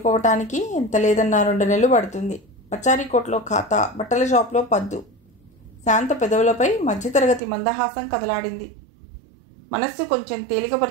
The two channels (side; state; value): left; drops out; at 7.4 s